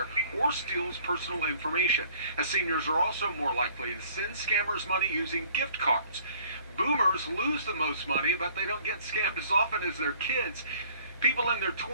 or steals personal information. As seniors are also more likely to send scammers money using gift cards. Boomers lose the most money, but they don't get scammed as often as their kids. People in their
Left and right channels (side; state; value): both; inverted; correlation -0.56